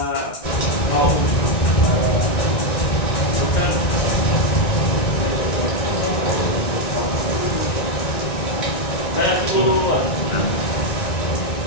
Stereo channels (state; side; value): late; right; 1.9 ms